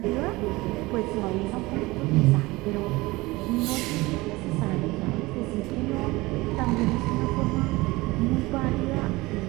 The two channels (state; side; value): quieter; left; 21.4 dB